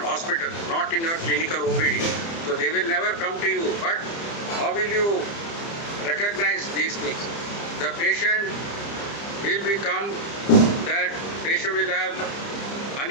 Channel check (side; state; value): right; late; 30 ms